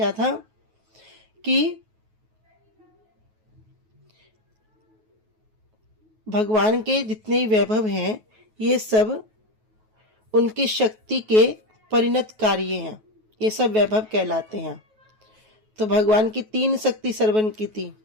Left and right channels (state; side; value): late; left; 9.3 ms